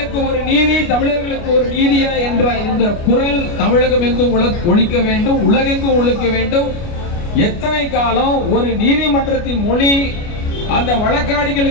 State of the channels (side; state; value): right; late; 29 ms